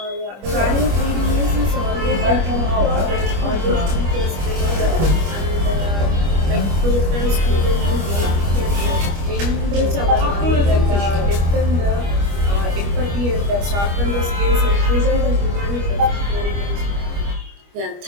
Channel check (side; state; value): left; late; 25 ms